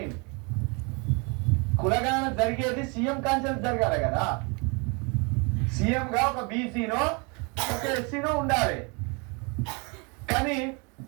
కులగణన జరిగేది సీఎం కాన్సెన్స్ జరగాలి కదా. సీఎం గా ఒక బీసీనో ఒక ఎస్సీనో ఉండాలి. కానీ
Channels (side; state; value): left; quieter; 31.5 dB